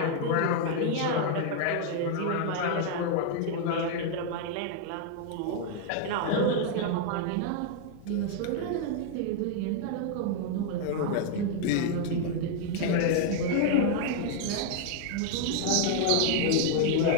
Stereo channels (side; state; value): both; different; correlation 0.00